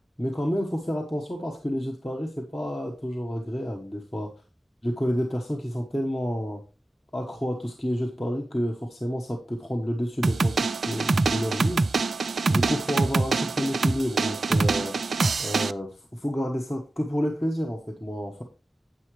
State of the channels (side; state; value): both; normal; correlation 0.94